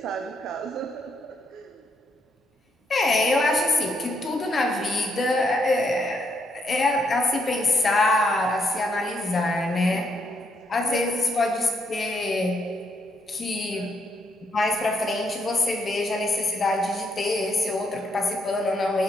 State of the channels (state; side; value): normal; both; correlation 0.75